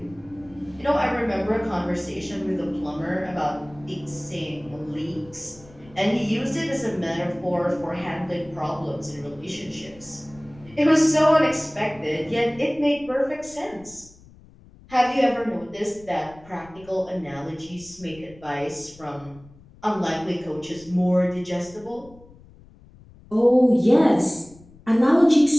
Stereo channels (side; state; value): left; noise; rumble, 24 dB below the sound